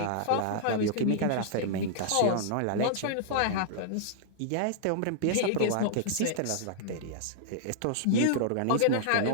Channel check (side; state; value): both; different; correlation -0.01